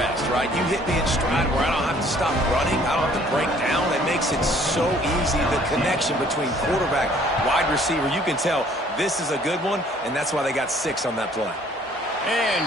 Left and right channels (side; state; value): both; normal; correlation 0.58